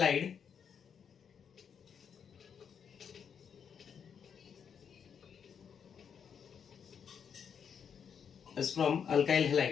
Is from alkyl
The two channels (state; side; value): quieter; right; 7.3 dB